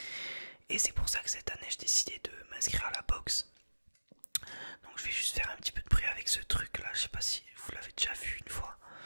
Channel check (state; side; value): inverted; both; correlation -1.00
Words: Et c'est pour ça que cette année j'ai décidé de m'inscrire à la boxe. Donc je vais juste faire un petit peu de bruit avec ce truc là, je sais pas si vous l'avez déjà vu une fois.